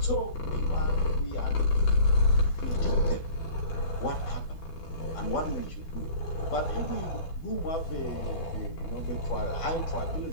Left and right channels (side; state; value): right; late; 12 ms